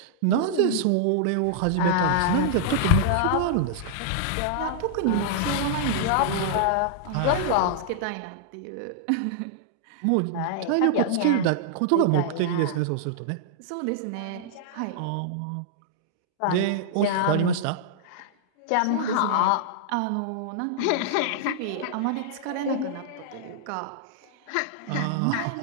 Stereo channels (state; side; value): different; both; correlation -0.01